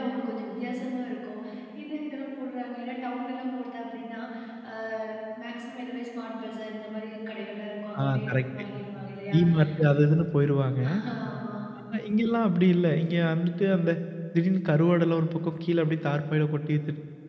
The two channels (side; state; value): both; identical; correlation 1.00